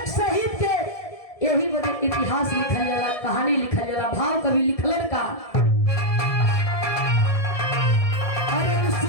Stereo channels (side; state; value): right; late; 1.7 ms